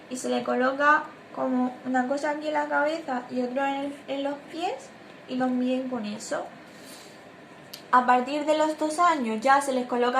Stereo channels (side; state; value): both; identical; correlation 1.00